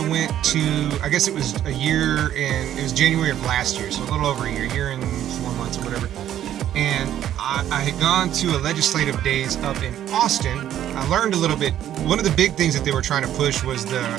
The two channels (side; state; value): left; quieter; 11.4 dB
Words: went to, I guess it was it was January of last year, so a little over a year and 4 months or whatever. And I had gone to a legislative days up in Austin. I learned a little bit. One of the big things that they were trying to push was the